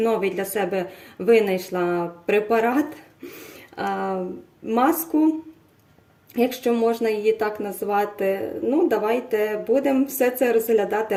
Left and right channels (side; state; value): both; identical; correlation 1.00